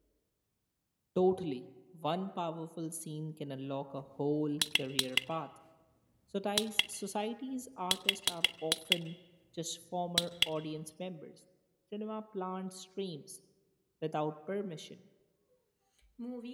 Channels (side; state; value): both; identical; correlation 1.00